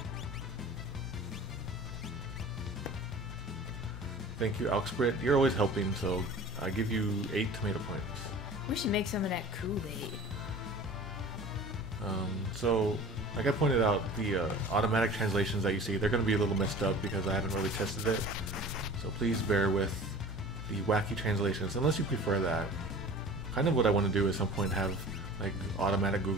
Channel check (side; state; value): both; normal; correlation 0.42